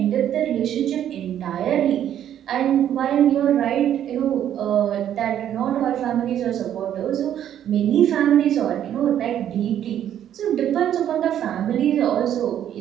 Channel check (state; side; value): quieter; left; 10.5 dB